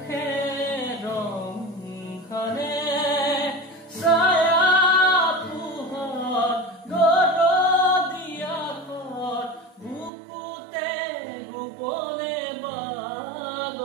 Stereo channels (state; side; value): drops out; left; at 10.1 s